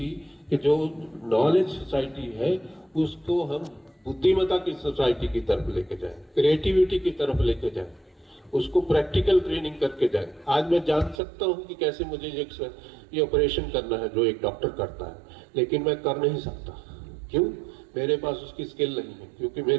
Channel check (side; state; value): left; drops out; at 11.2 s